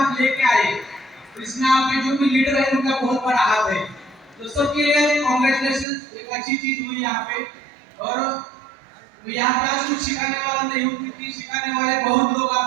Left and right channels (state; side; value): drops out; left; at 5.9 s